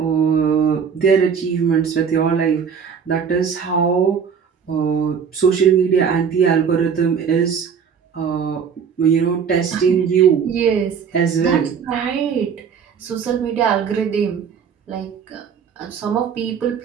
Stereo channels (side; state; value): left; quieter; 6.8 dB